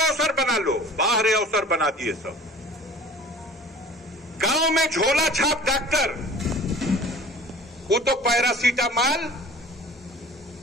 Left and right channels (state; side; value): normal; both; correlation 0.45